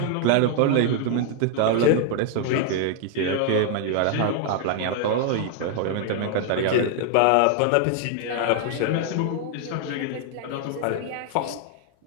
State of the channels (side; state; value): both; different; correlation 0.00